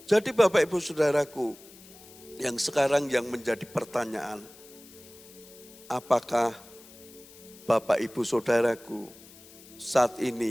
Jadi Bapak Ibu Saudaraku, yang sekarang yang menjadi pertanyaan, apakah Bapak Ibu Saudaraku saat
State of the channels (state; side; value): noise; left; hiss, 21 dB below the sound